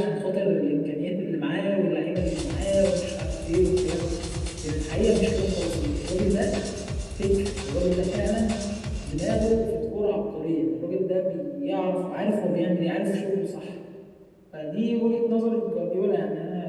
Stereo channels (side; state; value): both; identical; correlation 1.00